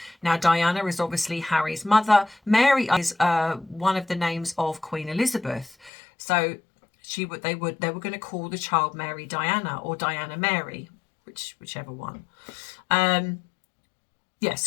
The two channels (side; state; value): right; drops out; at 5.9 s